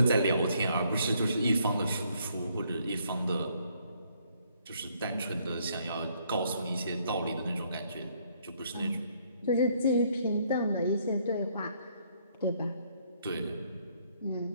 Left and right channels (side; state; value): both; inverted; correlation -0.68